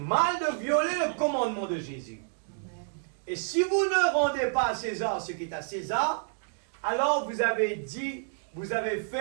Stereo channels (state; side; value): silent; left; digital silence